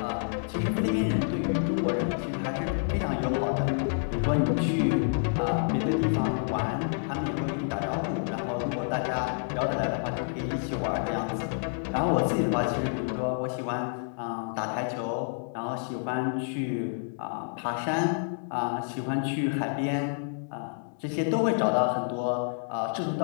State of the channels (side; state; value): right; silent; digital silence